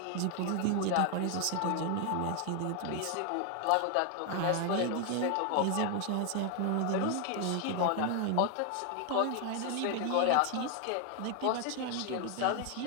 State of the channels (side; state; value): both; different; correlation 0.00